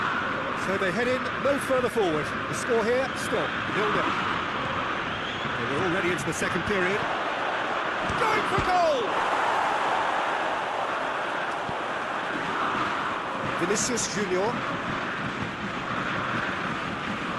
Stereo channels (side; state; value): both; identical; correlation 1.00